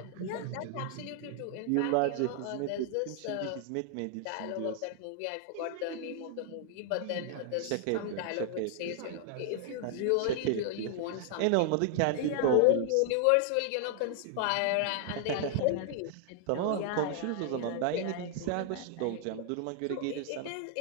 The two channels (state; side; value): different; both; correlation 0.00